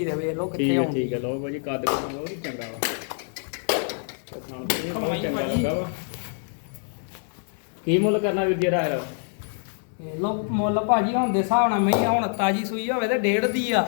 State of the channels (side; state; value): right; silent; 57 dB below the other